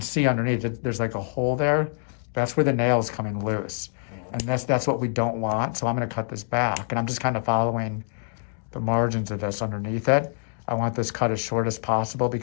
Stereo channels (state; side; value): silent; right; digital silence